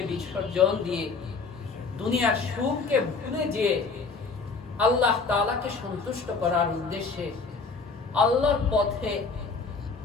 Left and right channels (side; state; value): right; quieter; 4.5 dB